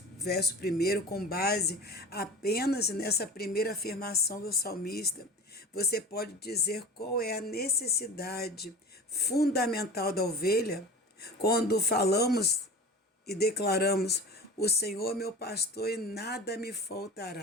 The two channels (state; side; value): normal; both; correlation 0.35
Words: verso 1, com base apenas nessa primeira afirmação do salmista, você pode dizer qual é a necessidade fundamental da ovelha quando falamos e declaramos: O Senhor é meu pastor e nada me